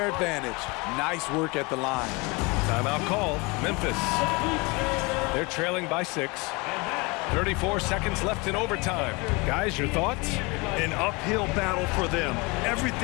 advantage. Nice work at the line. Timeout called, Memphis. They're trailing by 6. 34 seconds left in overtime. Guys, your thoughts? An uphill battle for them.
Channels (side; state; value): right; quieter; 26.8 dB